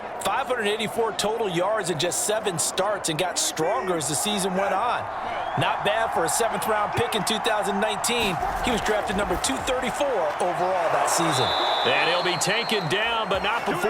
584 total yards in just 7 starts and got stronger as the season went on. Not bad for a 7th-round pick in 2019. He was drafted number 234 overall that season. And he'll be taken down, but not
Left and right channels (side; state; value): both; identical; correlation 1.00